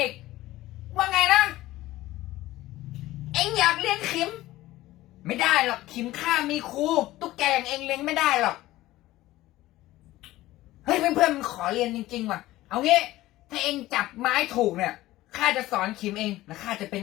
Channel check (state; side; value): quieter; right; 16.6 dB